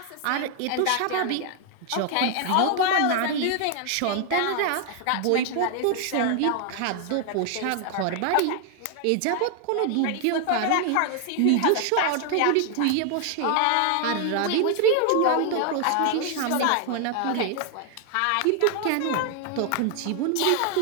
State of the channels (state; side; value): different; both; correlation 0.00